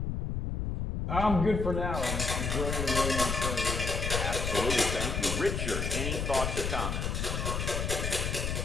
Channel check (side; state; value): left; noise; rumble, 1 dB below the sound